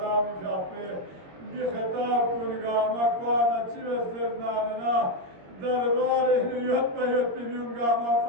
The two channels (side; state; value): left; late; 21 ms